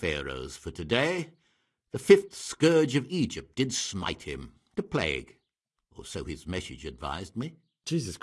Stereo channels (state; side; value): identical; both; correlation 1.00